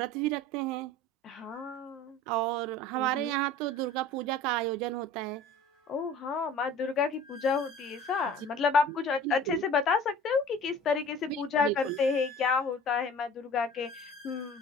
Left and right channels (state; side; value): normal; both; correlation 0.44